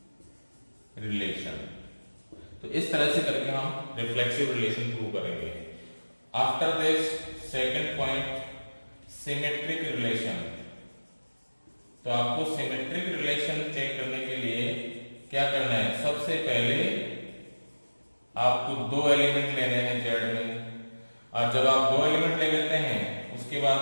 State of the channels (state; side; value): inverted; both; correlation -1.00